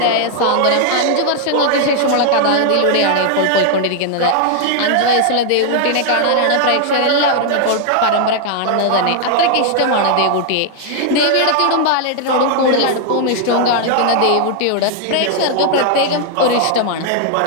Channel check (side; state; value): both; different; correlation 0.00